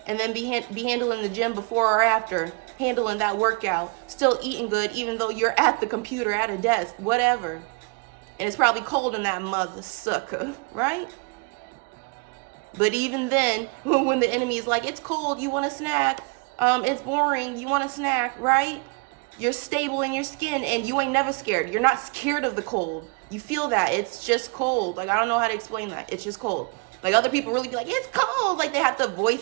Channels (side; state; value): left; quieter; 31.8 dB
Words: and then be handling the gym before or after. Handling that workout. Still eating good even though you're at the computer, at a desk, whatever. And it's probably cold in that mother sucker, right? But even then, when the enemy is like, it's cold, you want a snack. It's boring, you want a snack, right? You're stable in your skin and you ain't never scared. You're not scared of the cold. You feel that. It's just cold. Like, I don't know how to explain that. It's just cold. Like, other people really be like, it's cold. Like, they have to